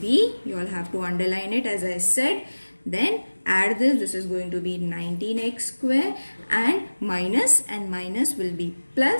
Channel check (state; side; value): inverted; both; correlation -1.00